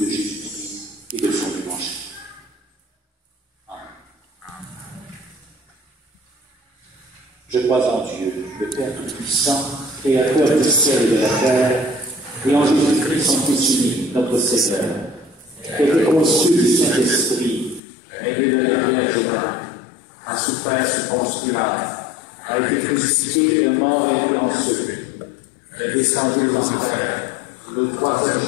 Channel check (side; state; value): right; drops out; at 17.8 s